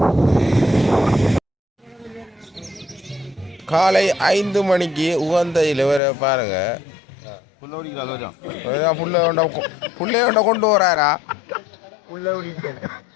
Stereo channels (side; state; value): right; drops out; at 6.0 s